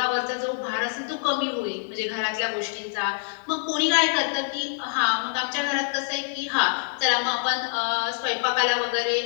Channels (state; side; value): silent; right; digital silence